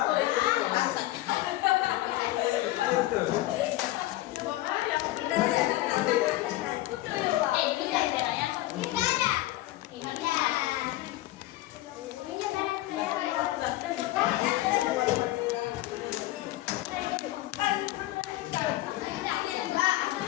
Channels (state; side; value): quieter; right; 16.8 dB